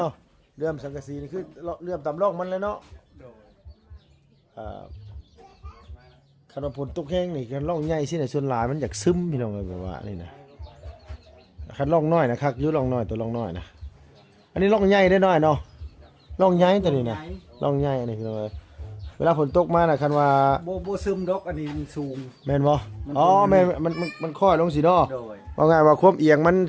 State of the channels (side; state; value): both; identical; correlation 1.00